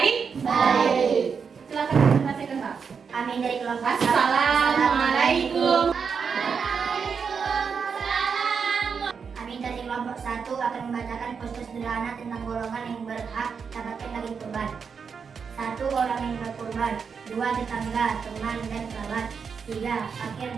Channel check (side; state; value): left; quieter; 6.1 dB